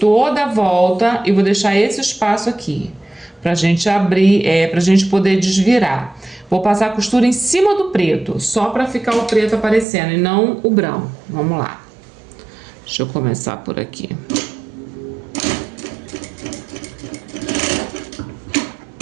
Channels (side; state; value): left; drops out; at 9.9 s